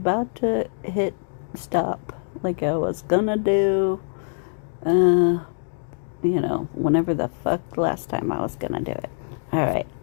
to hit stop like I was going to do, whenever the fuck last time I was going to do it. All right.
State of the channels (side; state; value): right; silent; digital silence